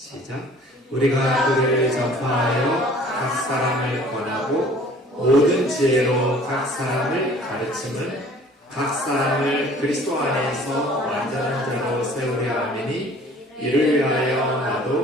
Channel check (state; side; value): normal; both; correlation 0.51